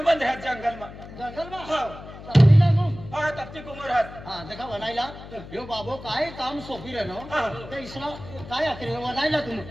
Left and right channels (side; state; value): left; noise; hum, 15 dB below the sound